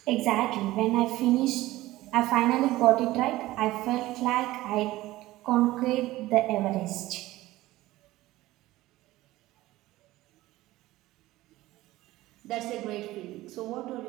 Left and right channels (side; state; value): left; quieter; 17.2 dB